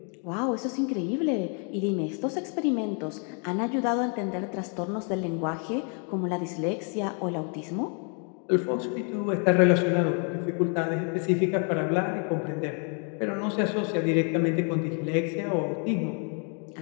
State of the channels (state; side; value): quieter; right; 40.0 dB